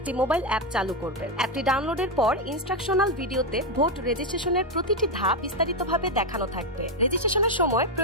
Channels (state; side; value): normal; both; correlation 0.06